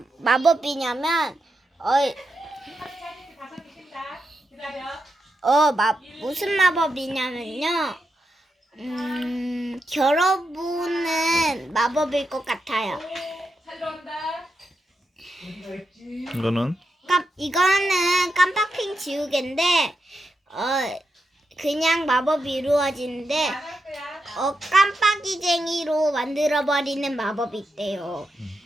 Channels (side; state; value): both; normal; correlation 0.86